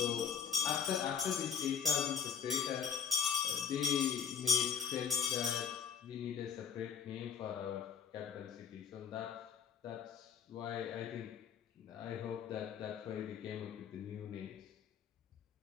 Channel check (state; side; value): quieter; right; 7.4 dB